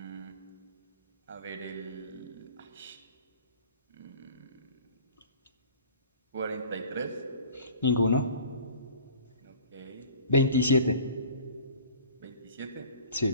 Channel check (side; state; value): both; inverted; correlation -0.46